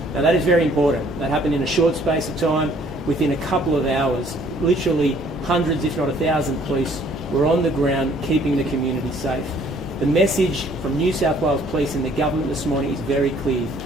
Now that is very important. That happened in a short space of time. Within a couple of hours, literally hundreds, if not 1,000 police were on the ground keeping the community safe. The message from New South Wales Police and the government this morning is very clear.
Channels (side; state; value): both; normal; correlation 0.60